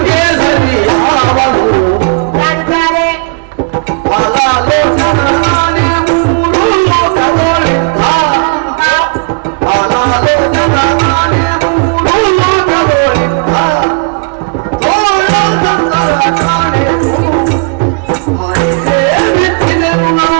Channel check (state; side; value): quieter; left; 36.1 dB